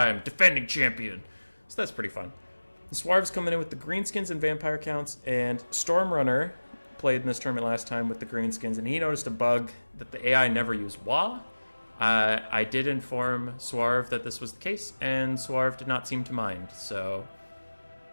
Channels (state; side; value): inverted; both; correlation -1.00